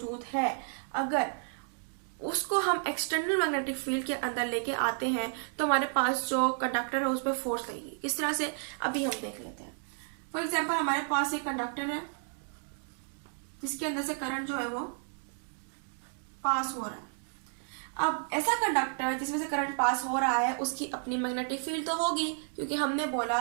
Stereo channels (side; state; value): left; silent; 56 dB below the other